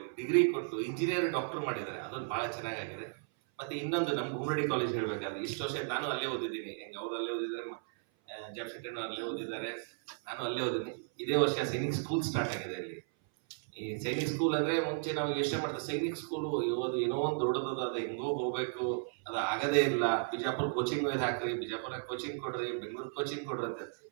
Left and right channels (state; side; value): silent; left; 55 dB below the other